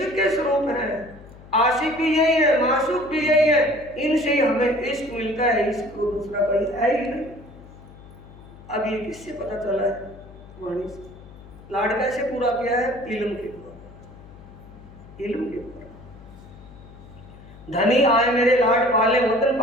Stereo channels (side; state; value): left; noise; hum, 19 dB below the sound